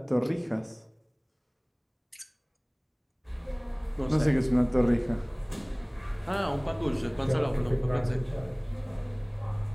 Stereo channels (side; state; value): both; identical; correlation 1.00